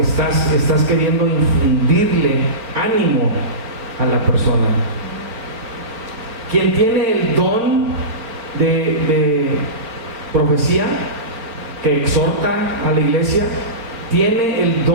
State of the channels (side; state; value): left; late; 4.6 ms